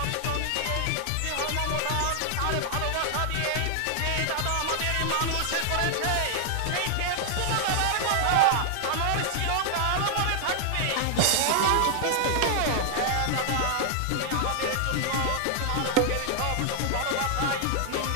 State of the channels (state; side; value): different; both; correlation 0.00